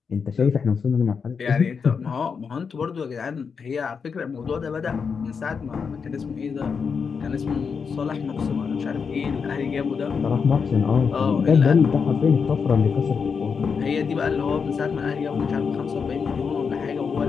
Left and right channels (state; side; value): quieter; right; 5.9 dB